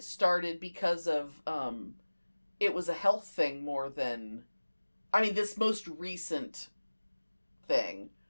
started because of, it was a health thing more than, this most recent thing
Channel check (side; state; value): both; inverted; correlation -1.00